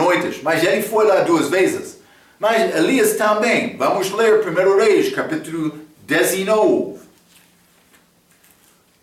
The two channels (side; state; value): both; identical; correlation 1.00